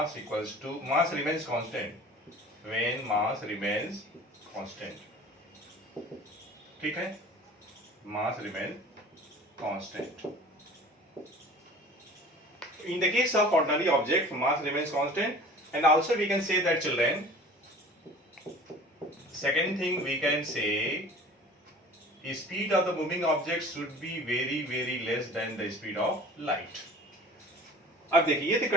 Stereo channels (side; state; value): both; normal; correlation 0.43